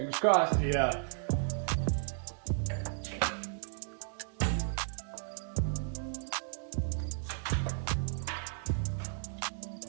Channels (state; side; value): silent; left; digital silence